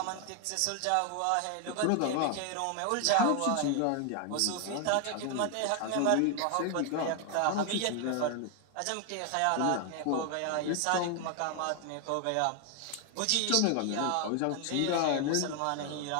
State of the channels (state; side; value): different; both; correlation 0.00